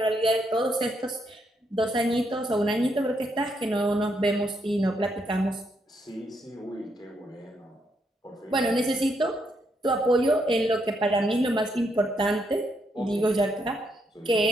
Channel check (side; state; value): both; normal; correlation 0.77